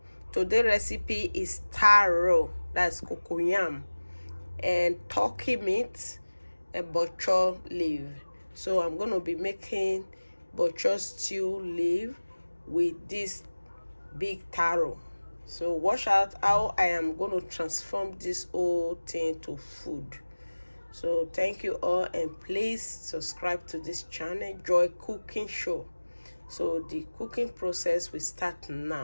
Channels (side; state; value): both; inverted; correlation -1.00